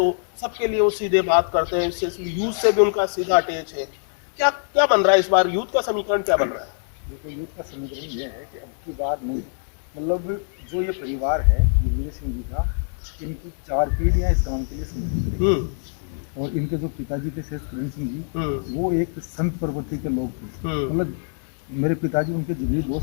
सबके लिए वो सीधे बात करते हैं, यूथ से भी उनका सीधा अटैच है। क्या क्या बन रहा है इस बार, यूथ का समीकरण क्या बन रहा है? देखो, यूथ का समीकरण ये है कि अब की बार नहीं, मतलब जो ये परिवार है दिग्विजय सिंह जी का, इनकी 4 पीढ़ियाँ इस काम के लिए समर्पित। और इनके जो पिताजी थे शेष किरण सिंह जी, वो एक संत प्रवृत्ति के लोग थे। मतलब मेरे पिताजी उनके जिगरी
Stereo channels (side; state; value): right; silent; 63 dB below the other